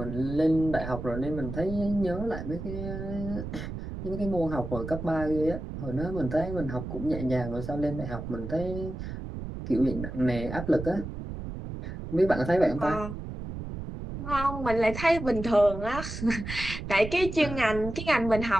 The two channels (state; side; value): noise; right; rumble, 7 dB below the sound